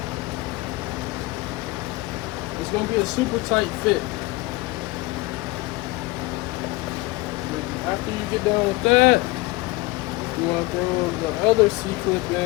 It's going to be a super tight fit. After you get done with that, you want to throw the other C-clip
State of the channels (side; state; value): right; quieter; 21.6 dB